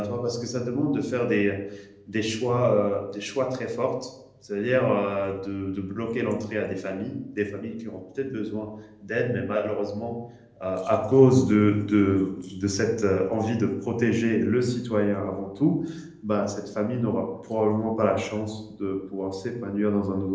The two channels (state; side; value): identical; both; correlation 1.00